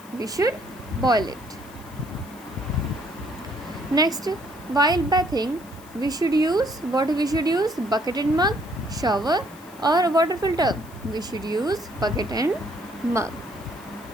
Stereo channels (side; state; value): left; noise; hiss, 23 dB below the sound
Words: We should boil it. Next, while bathing, we should use bucket and mug, shower, or water filter. We should use bucket and mug.